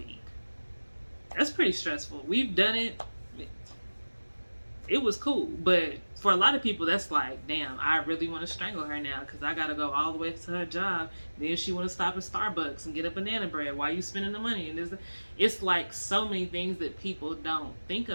That's pretty stressful. We've done it. It was cool, but for a lot of people, that's like, damn, I really want to strangle her now because I got to go all the way to her job. Then she want to stop at Starbucks and get a banana bread. Why you spending the money? And it's like so many things that people don't think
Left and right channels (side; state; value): both; inverted; correlation -1.00